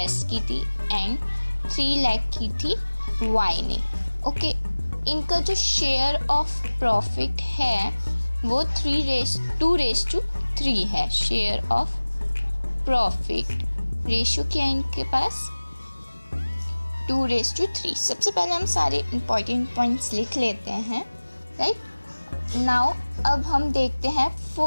की थी एंड 3 लाख की थी वाई ने। ओके, इनका जो शेयर ऑफ प्रॉफिट है वो 2:3 है। शेयर ऑफ प्रॉफिट रेशियो क्या है इनके पास, 2:3। सबसे पहले हम सारे इंपॉर्टेंट पॉइंट्स लिख लेते हैं, राइट। नाउ अब हम देखते हैं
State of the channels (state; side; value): inverted; both; correlation -1.00